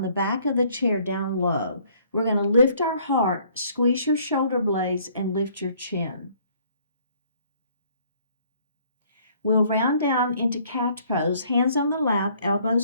the back of the chair down low. We're going to lift our heart, squeeze your shoulder blades, and lift your chin. We'll round down into cat pose, hands on the lap,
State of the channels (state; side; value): inverted; both; correlation -0.61